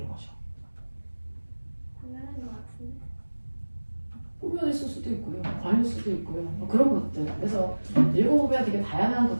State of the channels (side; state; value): both; inverted; correlation -1.00